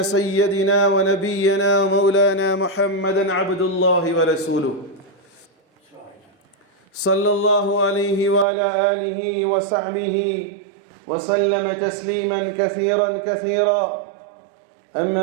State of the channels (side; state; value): left; drops out; at 8.5 s